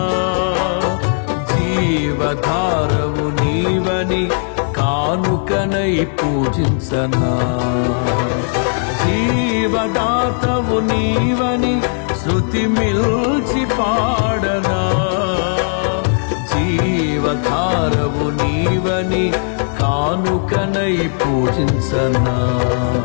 జీవధారవు నీవని కానుకనై పూజించనా, జీవదాతవు నీవని శృతి మిల్చి పాడనా, జీవధారవు నీవని కానుకనై పూజించనా,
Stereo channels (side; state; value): right; silent; digital silence